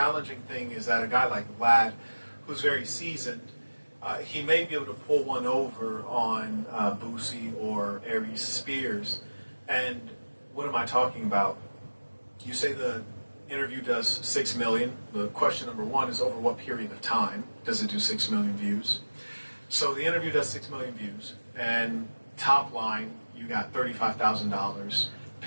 thing is that a guy like Vlad, who's very seasoned, he may be able to pull one over on Boosie or Aries Spears. And what am I talking about? You say the interview does 6 million. The question number one is, over what period of time does it do 6 million views? So the interview does 6 million views, and top line, you got $35,000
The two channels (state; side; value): inverted; both; correlation -1.00